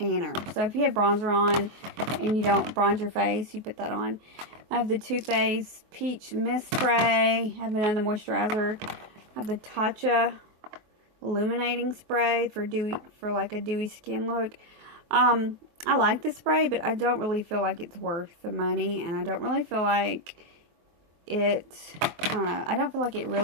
So if you have bronzer on and you don't bronze your face, you put that on. I have the Too Faced Peach Mist Spray. I have another moisturizer. I have the Tatcha Illuminating Spray for like a dewy skin look. I like this spray, but I don't really feel like it's worth the money, and I don't really feel like it, I don't know, I don't feel like it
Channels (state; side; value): late; left; 23 ms